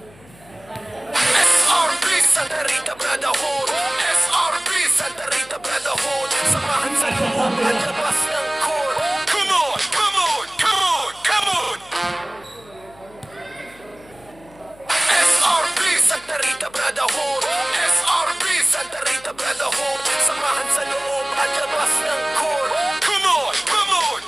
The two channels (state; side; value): noise; left; hum, 25 dB below the sound